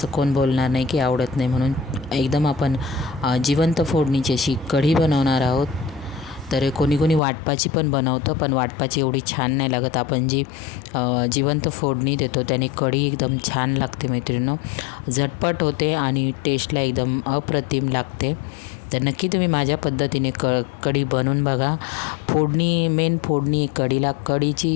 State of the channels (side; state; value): right; drops out; at 7.2 s